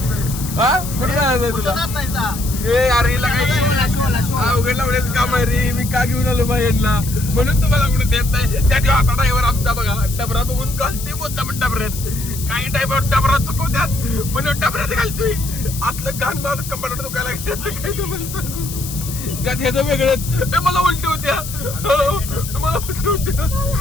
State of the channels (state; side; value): noise; left; hiss, 10 dB below the sound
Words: हा कुठे जायचं तुला ए अरे हिला काही अवघड लावण्याचं काम आहे रे मी का घेऊन आलो बाहेरला म्हणून तुम्हाला कुठे देत नाही त्या दिवस आता ड्रायव्हर आमचा बघा डबरा बघून घालते मुद्दा पण डबऱ्यात काही ड्रायव्हर डबरा चुकवत्यात म्हणून डबऱ्यात घालतोय असलं घाण मला कंपार्टमेंट दुखायला लागलं काय तुम्हाला सांगू त्यात ह्याचं वेगळंच मला उलटी होत्या मला उलटी होत्या